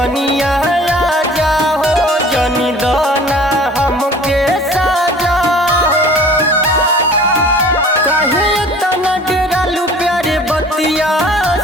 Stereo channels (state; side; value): normal; both; correlation 0.47